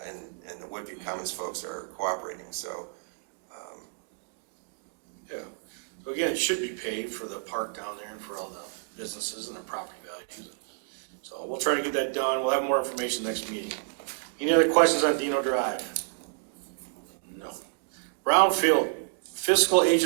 and the Woodview Commons folks are cooperating. So Yeah. So again, it should be paid for the park down there and for all the businesses and their property values. So we'll try to get that done. We'll have more information next meeting. Any other questions on Dino Drive? No. Brownfield fiscal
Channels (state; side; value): silent; left; digital silence